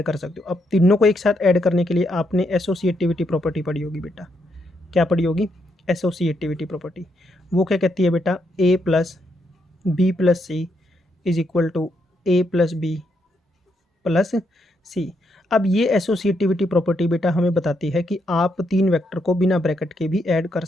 कर सकते हो। अब तीनों को एक साथ ऐड करने के लिए आपने एसोसिएटिविटी प्रॉपर्टी पढ़ी होगी बेटा। क्या पढ़ी होगी, एसोसिएटिविटी प्रॉपर्टी। वो क्या कहती है बेटा, a plus b plus c is equal to a plus b plus c. अब ये एसोसिएटिविटी प्रॉपर्टी बेटा हमें बताती है कि आप तीन वेक्टर को बिना ब्रैकेट के भी ऐड कर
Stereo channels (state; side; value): normal; both; correlation 0.78